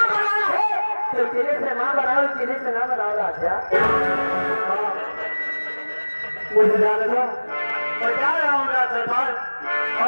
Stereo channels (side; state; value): both; inverted; correlation -1.00